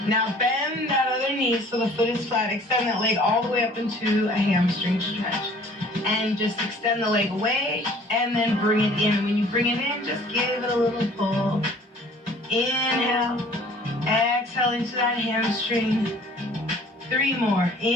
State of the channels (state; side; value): normal; both; correlation 0.52